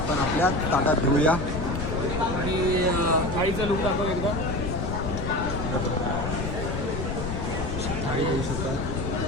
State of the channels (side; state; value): left; noise; rumble, 3 dB below the sound